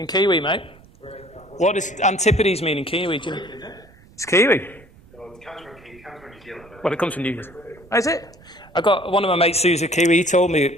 Kiwi, mate? What does antipodes mean in Kiwi? Do you know? It's Kiwi. Well, it comes from New Zealand. Well, it comes from New Zealand. Oh, is it? I got one of my mates who's a Kiwi. He told me,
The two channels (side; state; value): right; noise; rumble, 25 dB below the sound